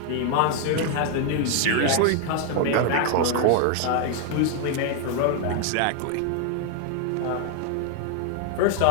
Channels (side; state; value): both; different; correlation 0.00